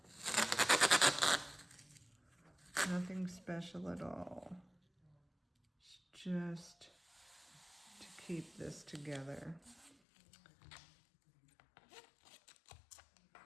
Nothing special at all. It's just to keep this together.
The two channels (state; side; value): drops out; right; at 10.0 s